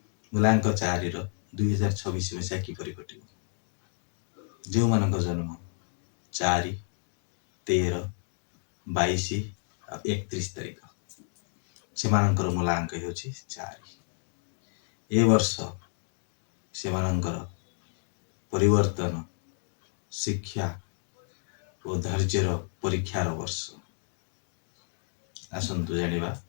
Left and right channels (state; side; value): silent; right; 57 dB below the other